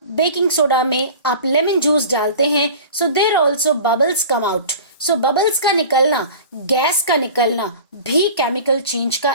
बेकिंग सोडा में आप लेमन जूस डालते हैं, so there also bubbles come out. So bubbles का निकलना, गैस का निकलना भी केमिकल चेंज का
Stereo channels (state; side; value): inverted; both; correlation -0.39